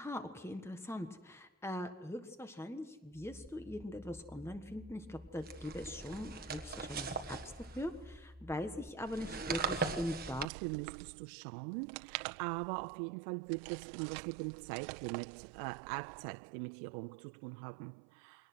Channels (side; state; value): left; drops out; at 10.5 s